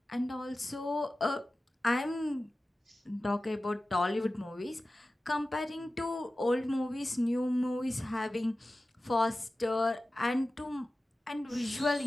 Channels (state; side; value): normal; both; correlation 0.95